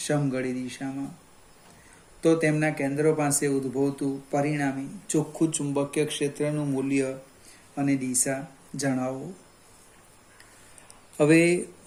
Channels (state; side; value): identical; both; correlation 1.00